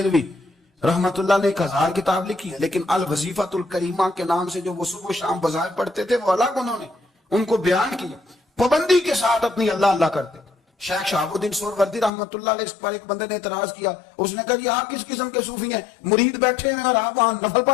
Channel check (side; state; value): right; drops out; at 12.1 s